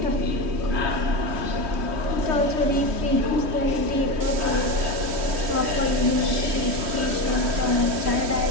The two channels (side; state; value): left; late; 3.1 ms